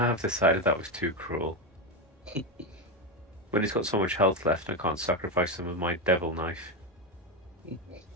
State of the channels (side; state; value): both; normal; correlation 0.12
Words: decided that was too cruel. When he's got so much health left, I can't sacrifice him with my devil knife.